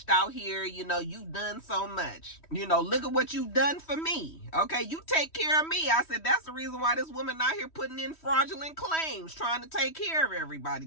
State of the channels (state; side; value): late; right; 3.1 ms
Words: out here. You know, you've done so much. You know, look at what you've done for me. Okay, you take care of me. I said, that's the reason why this woman out here putting in fraudulent claims, trying to take care of everybody